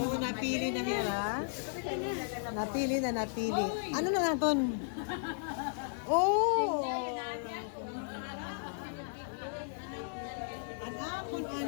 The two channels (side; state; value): right; silent; digital silence